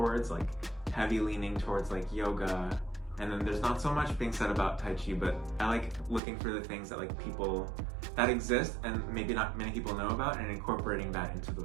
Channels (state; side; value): drops out; left; at 6.2 s